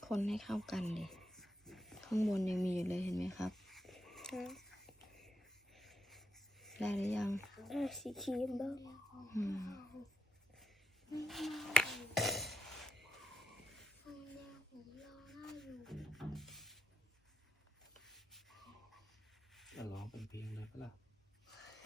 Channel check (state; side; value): normal; both; correlation 0.81